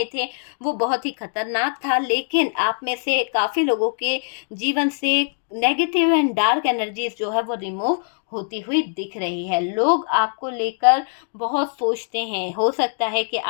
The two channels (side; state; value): right; silent; 64 dB below the other